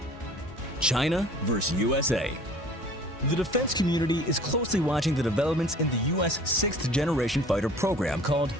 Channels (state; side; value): normal; both; correlation 0.48